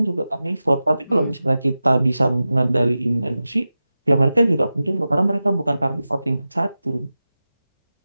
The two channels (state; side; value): inverted; both; correlation -0.94